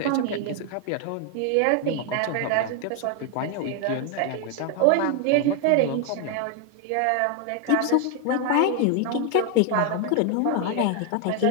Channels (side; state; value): both; different; correlation 0.01